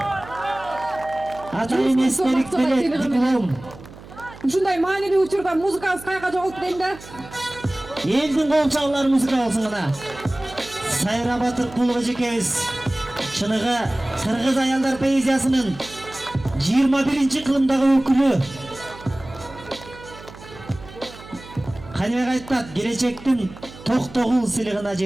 Ата эместерик берет диплом. Ушундай маанилүү учурда музыкабыз каяка жоголту дейм да. Элдин кол чабуулары музыка болсун гана. Сайра Батыркулова жекебиз чыныгы кыргыз аялдар поэзиясынын 21-чи кылымдагы өкүлү. Каныбек айтат, келечектин токтогул сыйлыгына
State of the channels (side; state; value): right; noise; hum, 18 dB below the sound